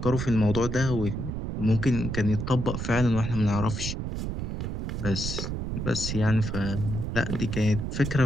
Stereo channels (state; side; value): noise; right; rumble, 4 dB below the sound